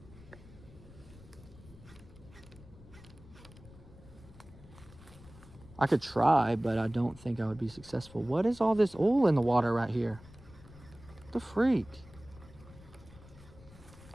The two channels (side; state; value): left; noise; rumble, 20 dB below the sound